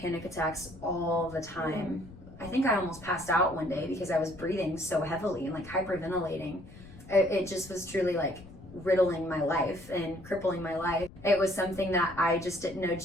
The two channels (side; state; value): left; noise; rumble, 19 dB below the sound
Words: attacks all the time. I think I almost passed out one day because I was breathing so heavily and like hyperventilating. It just was truly like riddling my life and crippling my life. It was something that I just didn't know